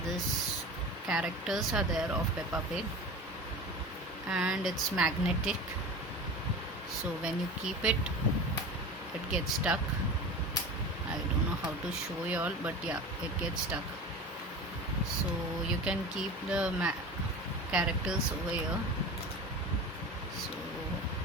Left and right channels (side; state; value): both; normal; correlation 0.32